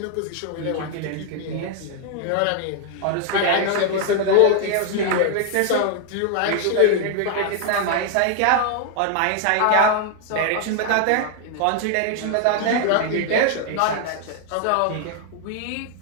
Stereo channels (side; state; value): both; different; correlation 0.00